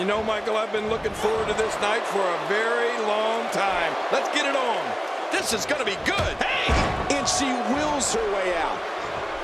know, Michael, I've been looking forward to this night for a very long time. Let's get it on. This is going to be good. Hey! And she wills her way out.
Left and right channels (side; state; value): both; identical; correlation 1.00